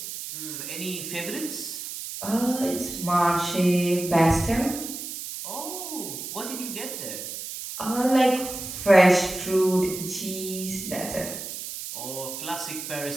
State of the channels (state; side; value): noise; right; hiss, 8 dB below the sound